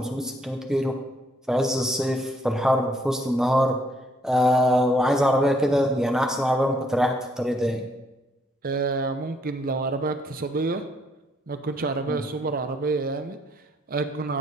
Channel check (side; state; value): both; normal; correlation 0.69